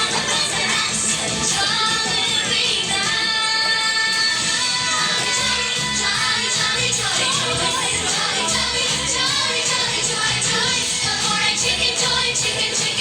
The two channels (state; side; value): identical; both; correlation 1.00